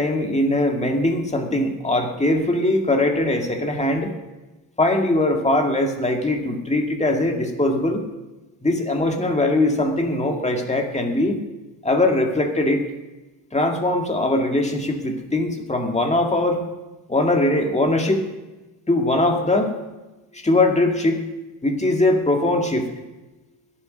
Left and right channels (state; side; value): normal; both; correlation 0.43